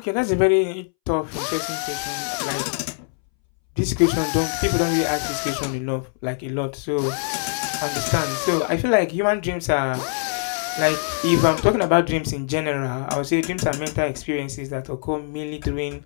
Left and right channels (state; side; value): silent; right; 63 dB below the other